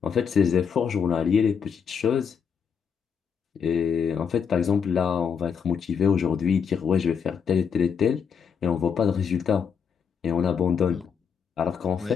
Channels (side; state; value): right; quieter; 6.8 dB